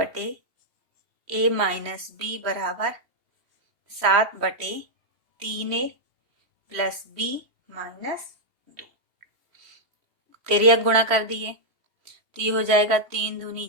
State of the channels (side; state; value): left; late; 3.1 ms